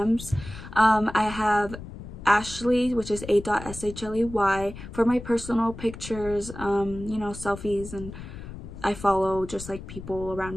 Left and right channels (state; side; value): noise; left; rumble, 12 dB below the sound